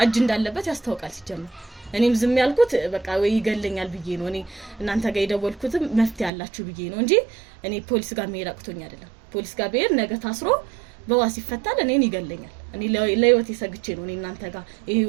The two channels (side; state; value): left; drops out; at 6.3 s